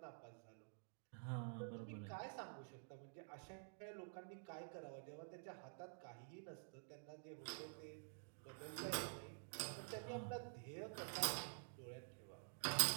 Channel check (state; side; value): silent; left; digital silence